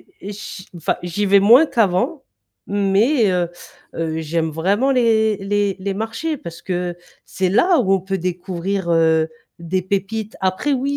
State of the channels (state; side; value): identical; both; correlation 1.00